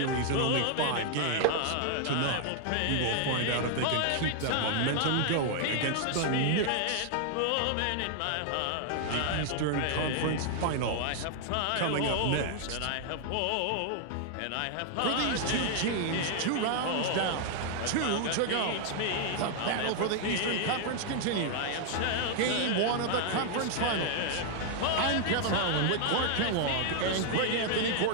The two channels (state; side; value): different; both; correlation 0.00